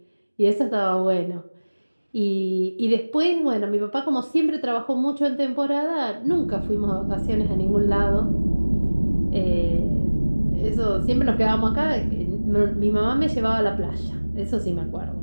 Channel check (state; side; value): inverted; both; correlation -1.00